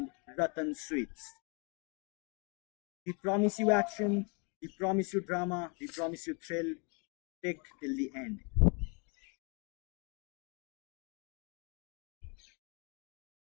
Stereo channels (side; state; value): right; quieter; 33.9 dB